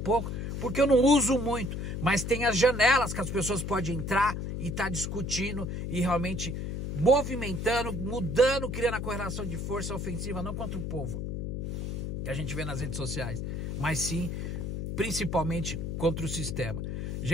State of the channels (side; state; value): left; noise; hum, 4 dB below the sound